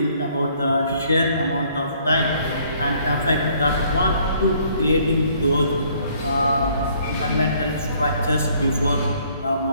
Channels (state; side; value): inverted; both; correlation -0.62